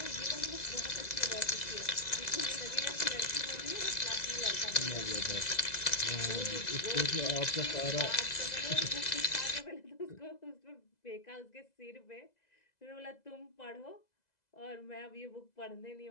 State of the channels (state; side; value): late; right; 2.0 ms